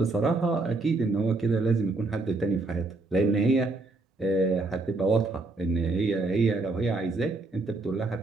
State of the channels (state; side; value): quieter; left; 3.3 dB